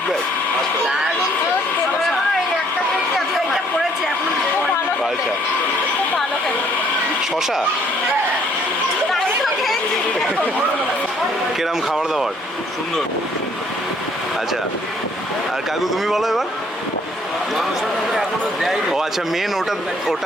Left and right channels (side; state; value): both; normal; correlation 0.63